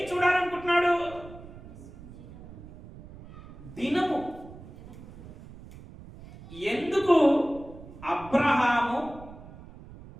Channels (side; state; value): right; noise; rumble, 17 dB below the sound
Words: చూడాలనుకుంటున్నాడు? దినము. ఎందుకు